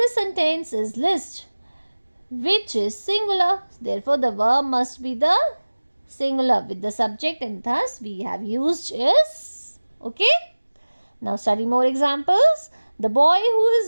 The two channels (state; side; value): inverted; both; correlation -1.00